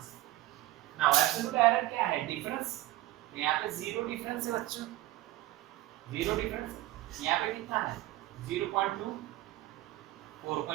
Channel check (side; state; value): left; quieter; 16.4 dB